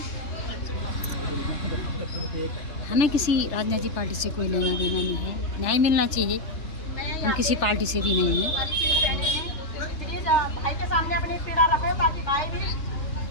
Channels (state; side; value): late; right; 3.3 ms